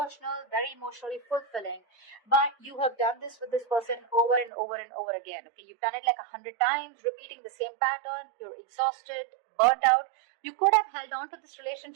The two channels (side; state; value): left; drops out; at 4.5 s